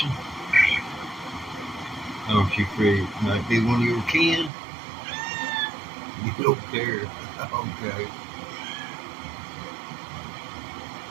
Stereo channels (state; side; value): drops out; left; at 4.5 s